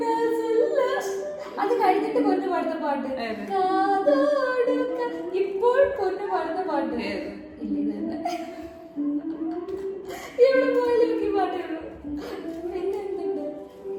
ചൊല്ല? അത് കഴിഞ്ഞിട്ട് പൊന്നു പാടുന്ന പാട്ട് ഇപ്പോൾ പൊന്നു പാടുന്ന പാട്ട് ഇവിടെ പോയാലും ഈ പാട്ടേ ഉള്ളൂ. പിന്നെ എന്തുണ്ട്?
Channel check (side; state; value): both; identical; correlation 1.00